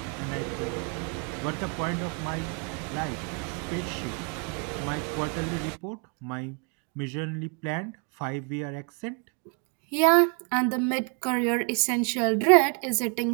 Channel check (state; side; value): quieter; left; 37.9 dB